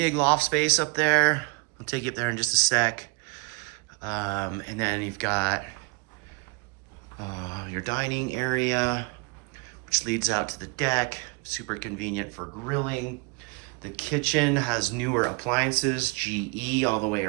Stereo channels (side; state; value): left; quieter; 29.2 dB